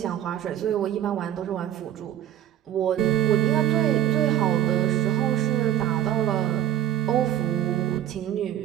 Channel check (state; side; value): quieter; left; 11.5 dB